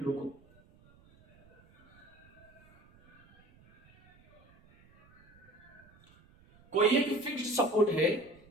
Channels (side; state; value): right; noise; rumble, 28 dB below the sound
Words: रुको, कोई एक फिक्स्ड सपोर्ट है,